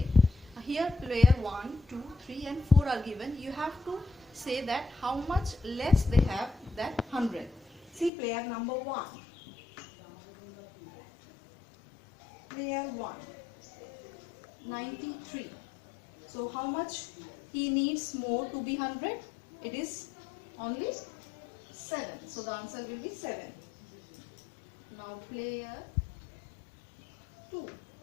Here player 1, 2, 3 and 4 are given. You have to say that how much less they have than 100. See player number 1. Player 1, 93. So how much he needs more to be 100? It is only 7. So the answer will be 7. Now player 2.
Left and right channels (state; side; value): drops out; right; at 8.1 s